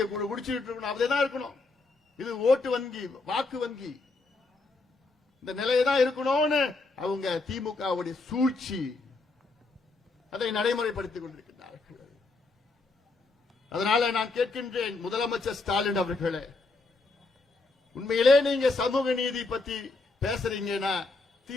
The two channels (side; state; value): right; quieter; 3.6 dB